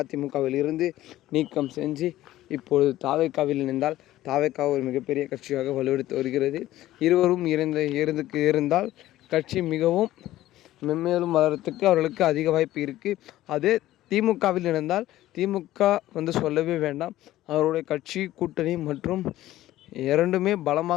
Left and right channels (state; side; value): quieter; right; 14.9 dB